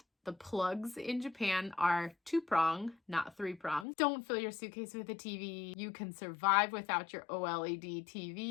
the plugs in Japan are 2-prong, not 3-prong. Don't fill your suitcase with a TV. You can survive without your OLED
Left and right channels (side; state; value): right; drops out; at 3.9 s